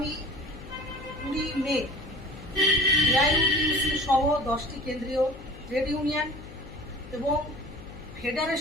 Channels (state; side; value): noise; left; hum, 16 dB below the sound